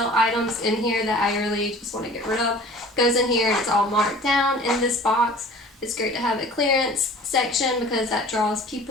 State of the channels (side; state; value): both; normal; correlation 0.45